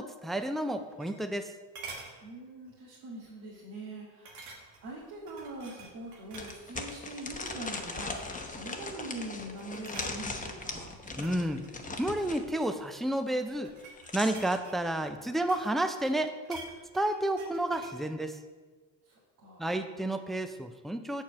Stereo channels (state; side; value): normal; both; correlation 0.73